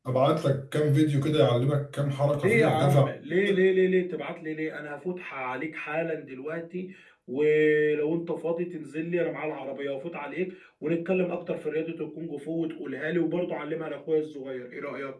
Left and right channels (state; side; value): identical; both; correlation 1.00